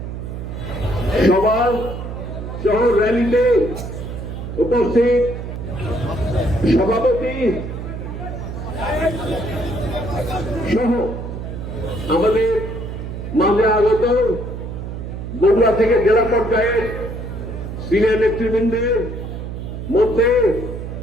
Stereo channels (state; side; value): noise; right; hum, 7 dB below the sound